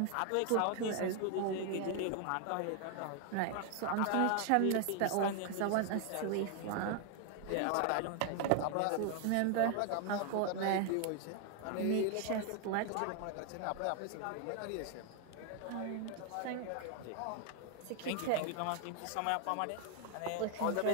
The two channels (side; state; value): both; different; correlation 0.00